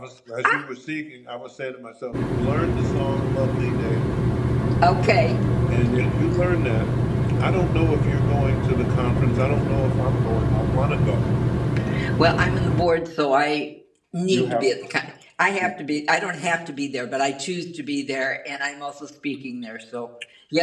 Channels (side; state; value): both; identical; correlation 1.00